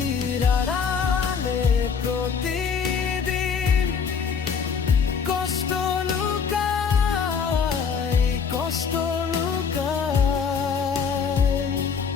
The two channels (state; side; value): quieter; right; 6.2 dB